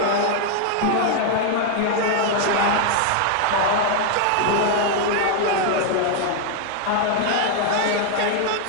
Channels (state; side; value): different; both; correlation 0.00